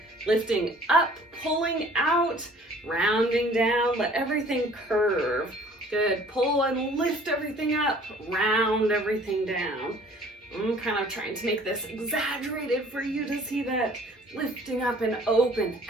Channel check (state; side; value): normal; both; correlation 0.53